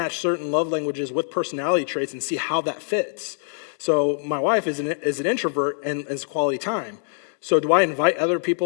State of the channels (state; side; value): silent; right; digital silence